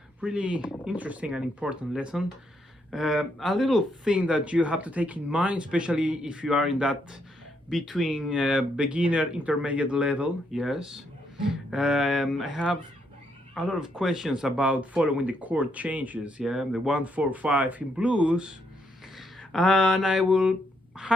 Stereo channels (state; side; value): normal; both; correlation 0.76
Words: Really interesting and important lesson. A little thing that you have to take in mind, especially if you are in that between beginner intermediate level. Yes, I have a lot of questions about following the chord changes. Yeah, the 1, 4, 5 in blues, and I will